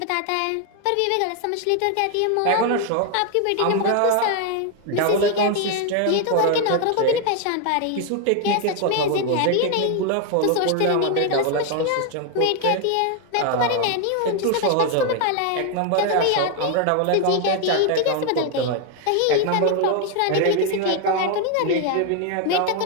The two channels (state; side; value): different; both; correlation 0.01